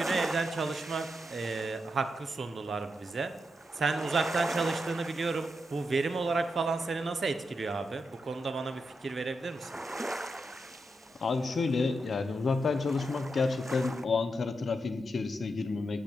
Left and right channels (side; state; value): both; normal; correlation 0.85